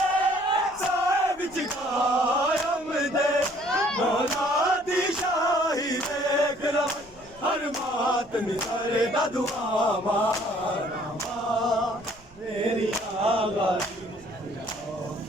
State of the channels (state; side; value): noise; right; rumble, 25 dB below the sound